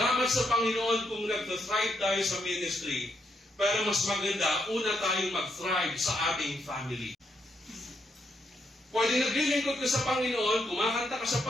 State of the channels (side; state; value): both; normal; correlation 0.78